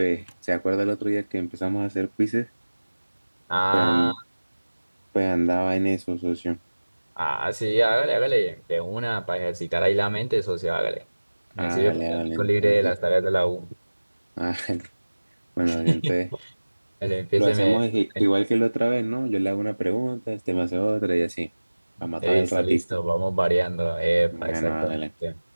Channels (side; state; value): both; inverted; correlation -1.00